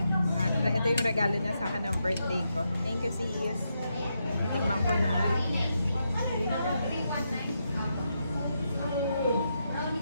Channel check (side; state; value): both; inverted; correlation -0.83